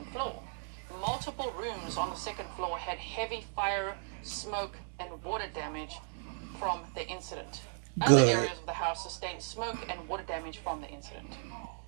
floor. Multiple rooms on the second floor had heavy fire, smoke, and water damage from the incident. Other areas of the house sustained smoke and water damage from the incident.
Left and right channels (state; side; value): silent; left; digital silence